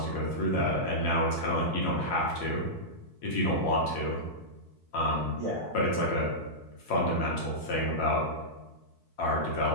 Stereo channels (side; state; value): right; late; 4.6 ms